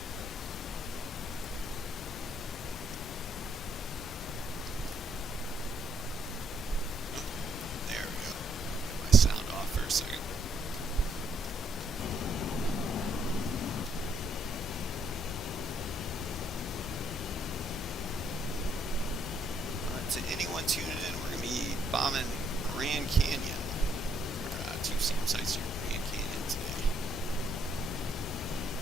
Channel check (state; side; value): normal; both; correlation 0.71